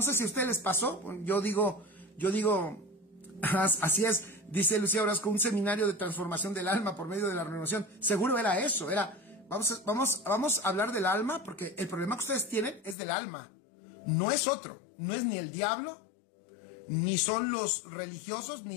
sé si a ustedes les pasó, yo digo, así es, dice Lucía Orozco, un seminario de transformación del alma por medio de la renovación, seguro era eso, vamos a hablar del alma, porque el problema que ustedes tienen es del alma, no es otro, no es ni el diablo, ni son los religiosos,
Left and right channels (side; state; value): right; drops out; at 13.0 s